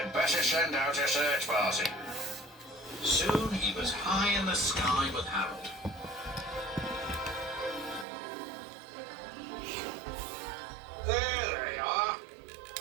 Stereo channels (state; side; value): drops out; left; at 8.1 s